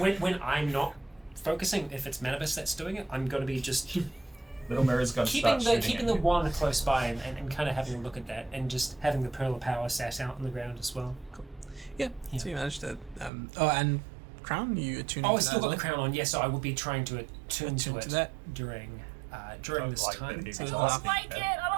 I'm not focusing, if it's Manibus that's doing it, I'm gonna be just Little Mirror's gonna keeping start the shooting at you. one close by and kind of having a look at that, and just having the Pearl of Power sat out on the ground as well. Yeah. So you managed to. And crown, you attuning Oh, I to still that got as the well? crown on. Yes, so I will be trying to attune to Attune it to that. during this Like time. that, So I it's don't not- like it.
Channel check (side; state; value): left; drops out; at 13.3 s